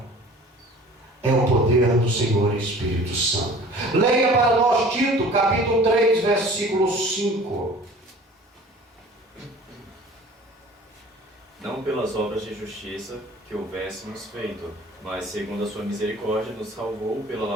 é o poder do Senhor Espírito Santo. Leia para nós Tito, capítulo 3, versículo 5. Não pelas obras de justiça que houvéssemos feito, mas segundo a sua misericórdia nos salvou pela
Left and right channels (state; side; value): normal; both; correlation 0.47